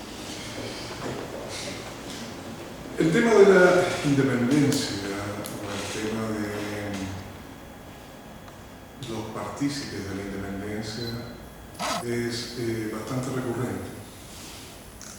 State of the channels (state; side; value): identical; both; correlation 1.00